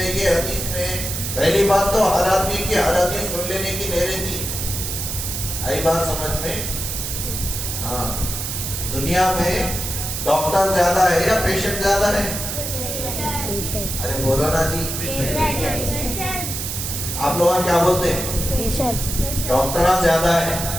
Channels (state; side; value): noise; right; hiss, 4 dB below the sound